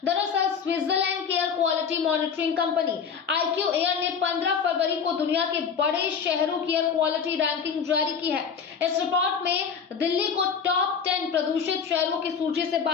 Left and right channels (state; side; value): quieter; right; 6.6 dB